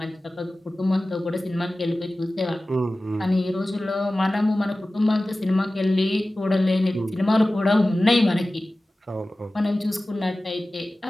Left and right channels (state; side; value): normal; both; correlation 0.96